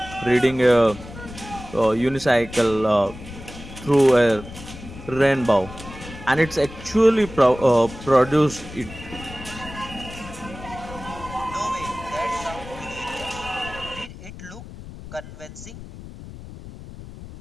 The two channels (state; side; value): noise; left; rumble, 14 dB below the sound